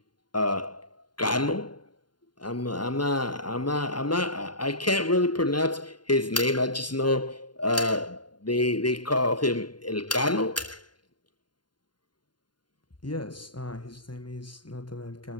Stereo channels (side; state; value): right; late; 0.71 ms